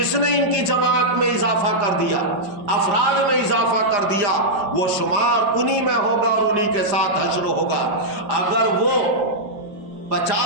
نے ان کی جماعت میں اضافہ کر دیا، افراد میں اضافہ کر دیا، وہ شمار انہی میں ہوگا اور انہی کے ساتھ حشر ہوگا۔ اگر وہ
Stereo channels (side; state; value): left; late; 5.0 ms